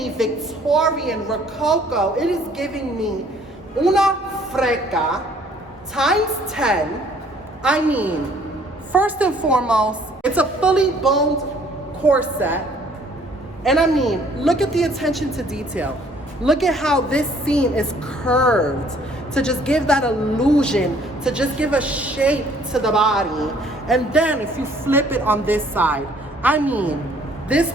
Victorian, Rococo, it is giving me una freca times 10. I mean, first and foremost, it's a fully boned corset. And I mean, look at the attention to detail. Look at how this seam is curved to just give that illusion, to just give a shape to the body. And then if you flip it on this side, I mean, this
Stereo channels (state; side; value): normal; both; correlation 0.59